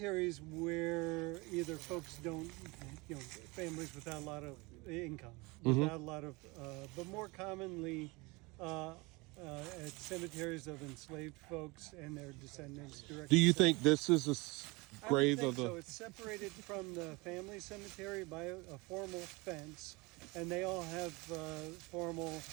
where either folks don't, families without a lot of income, without a lot of, but more commonly, at cemeteries of enslaved folks and their descendants directly. Do you think this is a grave of the... So it's separated from the family cemetery by a formal fence, and they all have formal,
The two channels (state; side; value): quieter; left; 25.3 dB